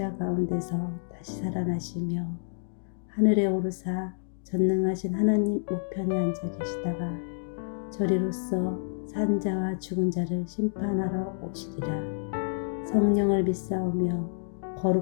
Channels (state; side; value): silent; right; digital silence